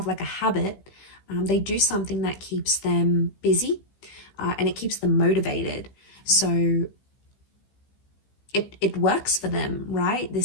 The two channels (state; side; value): late; right; 15 ms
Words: like a habit. They do something that keeps them busy, and it keeps them motivated. So it works for them, right?